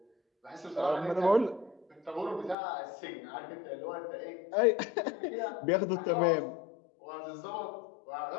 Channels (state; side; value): drops out; right; at 2.6 s